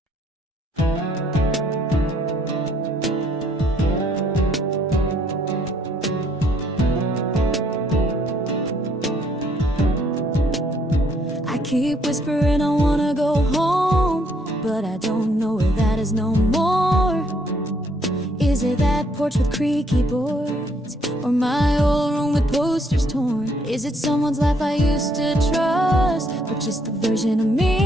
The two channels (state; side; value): normal; both; correlation 0.68